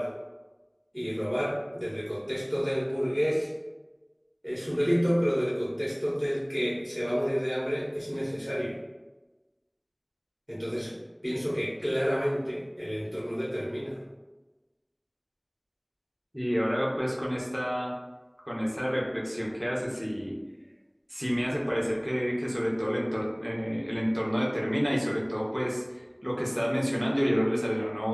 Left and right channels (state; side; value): identical; both; correlation 1.00